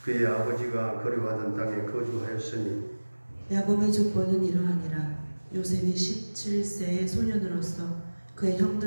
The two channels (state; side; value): inverted; both; correlation -1.00